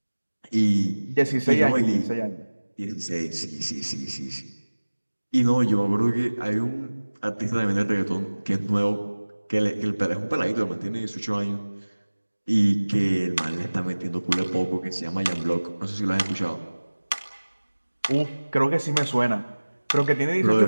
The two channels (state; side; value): inverted; both; correlation -1.00